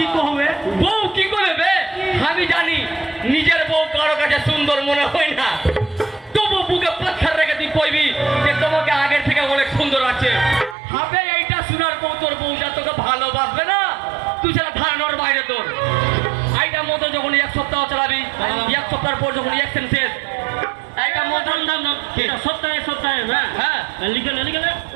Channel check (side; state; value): left; drops out; at 10.8 s